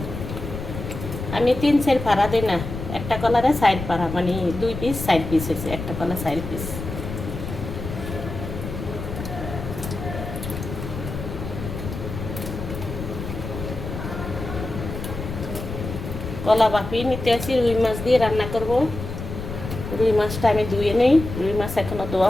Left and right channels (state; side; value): noise; left; rumble, 7 dB below the sound